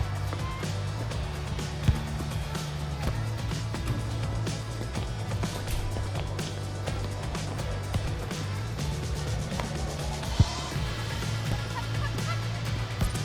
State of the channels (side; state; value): both; identical; correlation 1.00